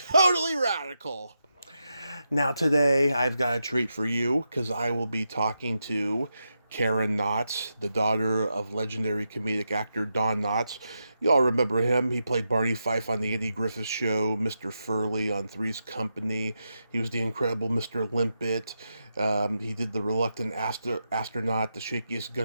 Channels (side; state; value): both; inverted; correlation -0.86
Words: radical. Now today I've got a treat for you because I will be talking to Karen Knotts, the daughter of legendary comedic actor Don Knotts. You all remember him. He played Barney Fife on The Andy Griffith Show, Mr. Furley on Three's Company. He was the incredible Mr. Limpet. He did The Reluctant Astronaut, The Shakiest